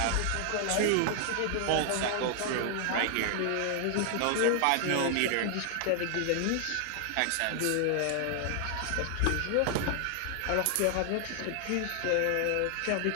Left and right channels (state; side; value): different; both; correlation 0.00